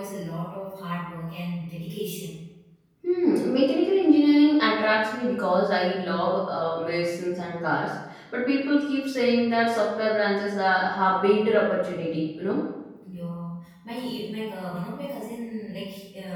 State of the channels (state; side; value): identical; both; correlation 1.00